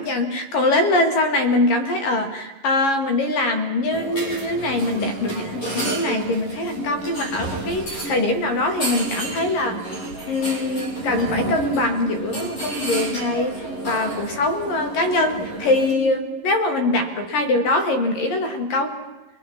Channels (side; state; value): right; late; 11 ms